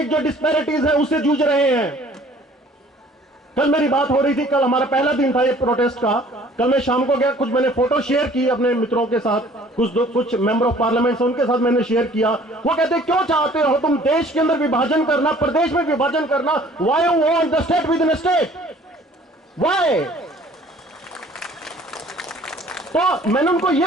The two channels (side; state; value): both; normal; correlation 0.53